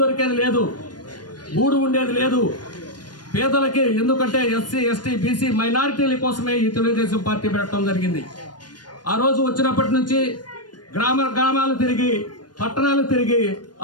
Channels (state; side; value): late; right; 0.70 ms